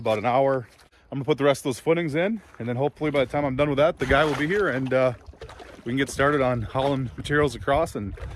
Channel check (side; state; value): both; identical; correlation 1.00